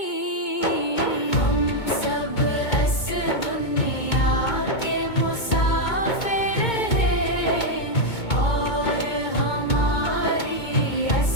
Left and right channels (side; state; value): right; late; 2.2 ms